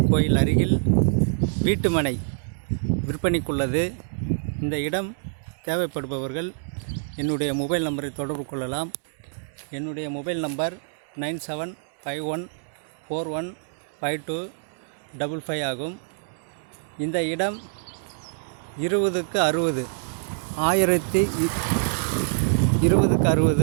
கோயில் அருகில் வீட்டுமனை விற்பனைக்குள்ளது. இந்த இடம் தேவைப்படுபவர்கள் என்னுடைய மொபைல் நம்பரை தொடர்பு கொள்ளலாம். என்னுடைய மொபைல் நம்பர் 9751415255 ஆகும். இந்த இடம் 20க்கு 60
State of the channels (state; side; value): silent; left; 61 dB below the other